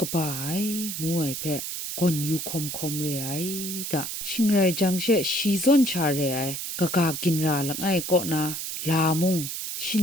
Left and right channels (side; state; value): right; noise; hiss, 5 dB below the sound